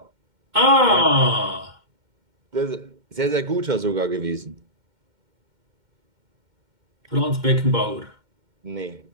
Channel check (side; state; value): left; late; 2.1 ms